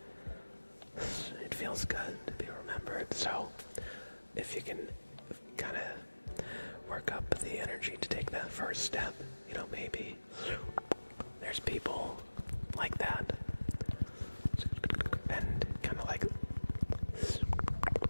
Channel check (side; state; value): both; inverted; correlation -1.00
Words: it feels good to be remembered. So if you can kind of work up the energy to take that first step, maybe there's people like that, and kind of like